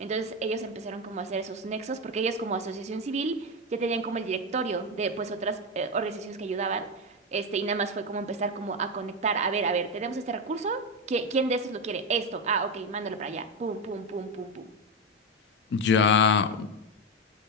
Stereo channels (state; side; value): normal; both; correlation 0.11